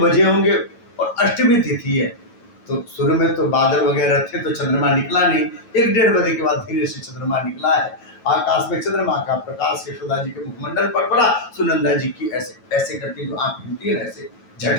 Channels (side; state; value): right; late; 9.4 ms